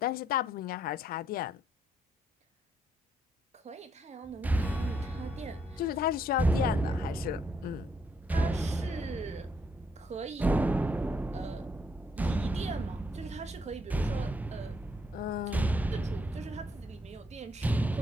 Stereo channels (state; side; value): normal; both; correlation 0.72